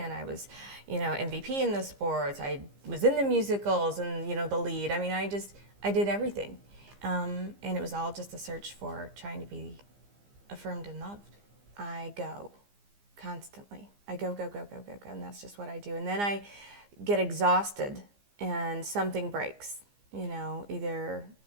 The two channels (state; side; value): late; left; 15 ms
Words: I was, MVP in the sports, I was in the musicals and, the lead. I did everything. And it was all just a search for trying to be affirmed and loved. I go constantly. I go, and that's just what I do. And then I get exhausted and something breaks, either